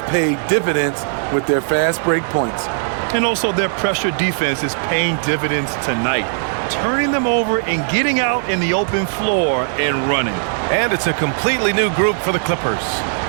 paid dividends with their fast break points. And also their pressure defense is paying dividends tonight, turning them over and getting out in the open floor and running. And it's a completely new group for the Clippers.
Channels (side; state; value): left; silent; digital silence